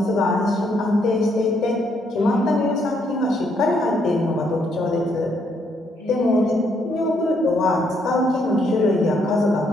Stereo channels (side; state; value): both; normal; correlation 0.72